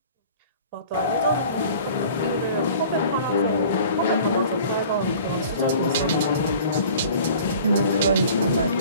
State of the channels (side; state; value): both; inverted; correlation -0.46